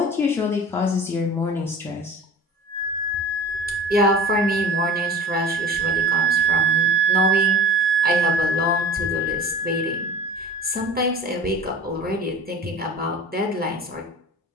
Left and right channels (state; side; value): normal; both; correlation 0.40